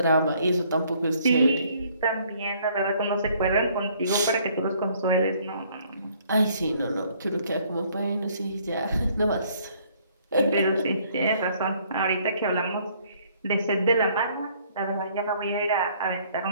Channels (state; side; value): inverted; both; correlation -0.62